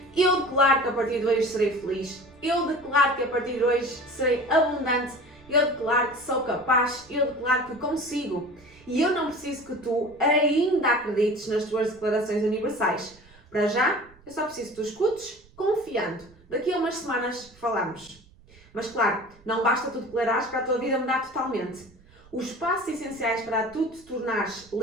Eu declaro que a partir de hoje serei feliz. Eu declaro que a partir de hoje serei abundante. Eu declaro que sou capaz. Eu declaro que consigo. E eu não preciso que tu ainda acredites nas tuas declarações universais. Para já, eu só preciso que tu escutes, confiando. Daqui a umas semanas falamos. Mas claro, não basta tu declarares para a tua vida mudar totalmente. Os passos essenciais para tu te tornares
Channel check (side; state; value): right; noise; rumble, 27 dB below the sound